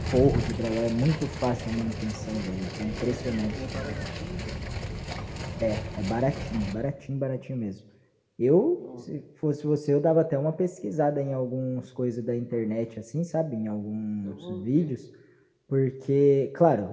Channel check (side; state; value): both; identical; correlation 1.00